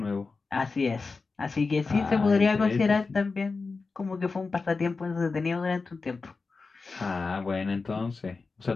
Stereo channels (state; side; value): quieter; right; 4.2 dB